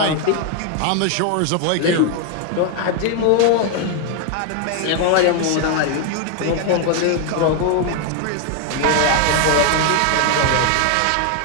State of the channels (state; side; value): different; both; correlation 0.01